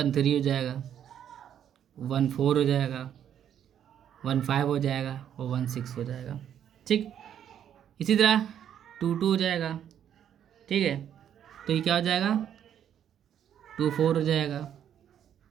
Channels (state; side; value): quieter; left; 9.6 dB